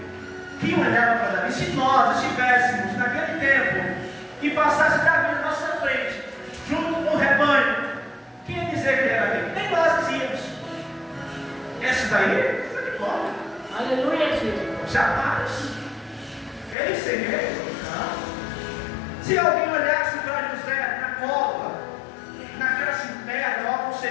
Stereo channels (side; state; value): right; drops out; at 16.8 s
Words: quem olhava para Davi? Se nós estivéssemos naquele tempo e passasse Davi na nossa frente, junto com o rebanho, quem ia dizer que era Davi? Nem nós dizíamos. Esse daí, está de bola. Aleluia, Jesus. Jamais. Ele seria. Se alguém olhasse para José na cova, naquela cisterna, ou algo